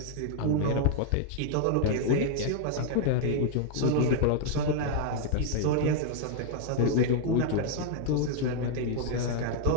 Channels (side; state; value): both; different; correlation 0.00